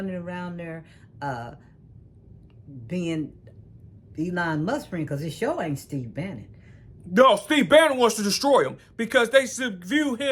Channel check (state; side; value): identical; both; correlation 1.00